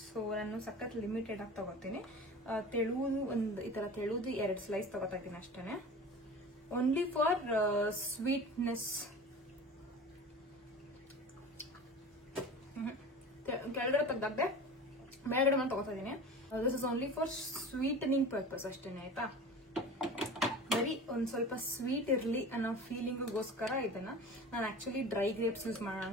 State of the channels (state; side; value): normal; both; correlation 0.36